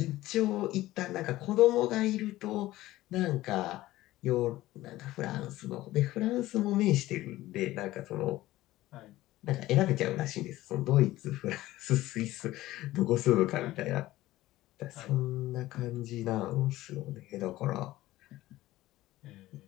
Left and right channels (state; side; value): quieter; right; 16.4 dB